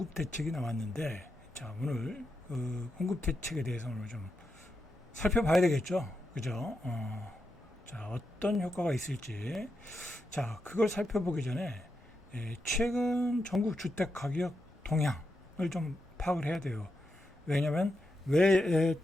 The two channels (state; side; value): normal; both; correlation 0.86